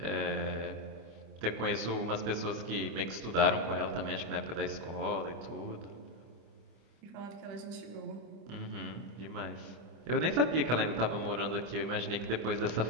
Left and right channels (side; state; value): left; late; 25 ms